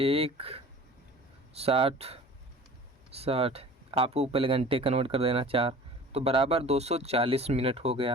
आपको पहले घंटे कन्वर्ट कर देना 4, तो बराबर 240 मिनट हो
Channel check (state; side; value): normal; both; correlation 0.43